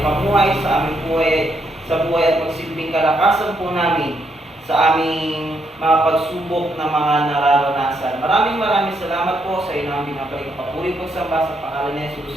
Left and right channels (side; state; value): both; normal; correlation 0.76